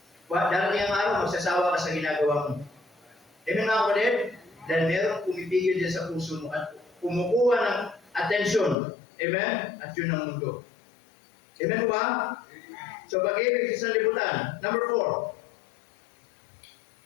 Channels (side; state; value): right; drops out; at 8.8 s